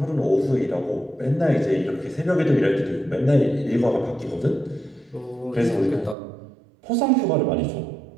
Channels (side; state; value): left; drops out; at 6.2 s